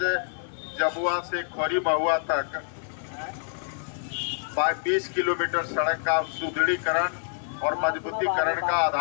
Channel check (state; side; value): silent; right; 60 dB below the other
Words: जबुआ से खोरी महुआ तक 20 किलोमीटर सड़क का सुदृढ़ीकरण और मजबूतीकरण का